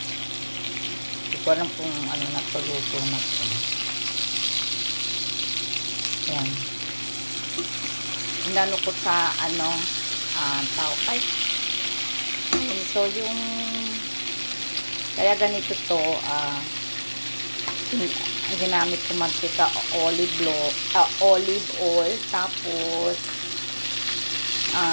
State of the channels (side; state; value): both; inverted; correlation -1.00